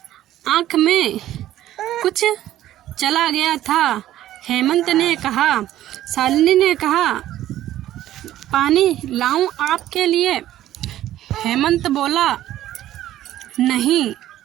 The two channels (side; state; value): left; quieter; 13.3 dB